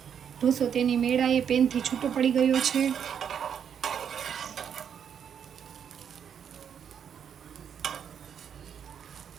ઢોસો તેની મેળાએ પેનથી છૂટો પડી ગયો છે.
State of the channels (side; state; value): left; quieter; 8.1 dB